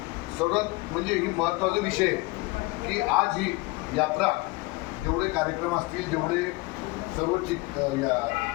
सर्वात म्हणजे ही महत्त्वाचा विषय की आज ही यात्रा जेवढे कार्यक्रम असतील, जेवढे सर्व या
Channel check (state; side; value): quieter; right; 23.1 dB